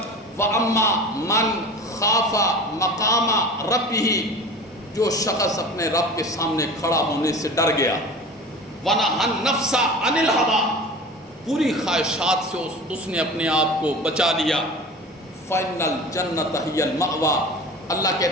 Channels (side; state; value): both; normal; correlation 0.36